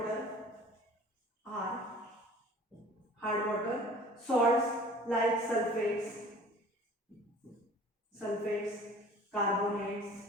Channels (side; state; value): both; normal; correlation 0.47